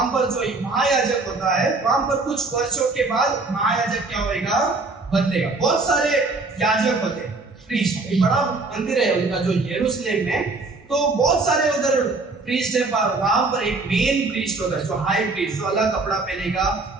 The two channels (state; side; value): quieter; left; 3.5 dB